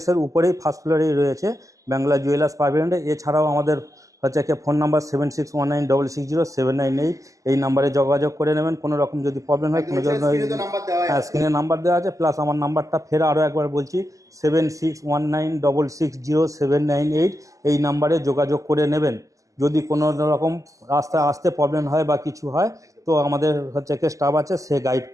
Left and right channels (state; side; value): late; left; 0.16 ms